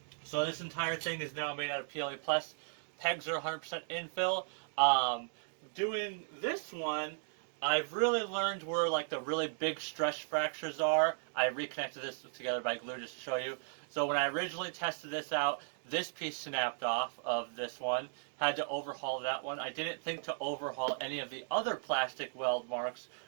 So this entire thing is now made out of PLA Plus. Pegs are 100% infill. Doing this one, I've really learned where like the really big stress fractures are. I reconnected this together by glue just to show you. So when I originally tested this out, this piece snapped off of this one. Had to overhaul that one. I didn't think to overhaul any of the other plastic weld marks,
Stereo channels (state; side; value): silent; left; digital silence